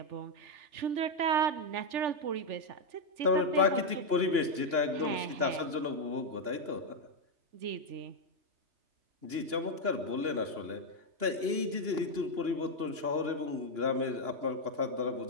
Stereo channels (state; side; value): late; left; 2.9 ms